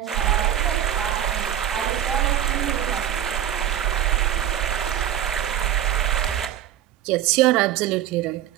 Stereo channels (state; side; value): quieter; left; 11.1 dB